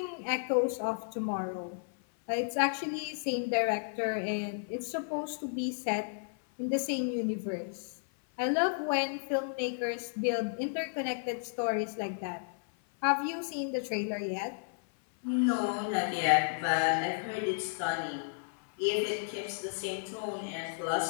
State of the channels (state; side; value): silent; right; 56 dB below the other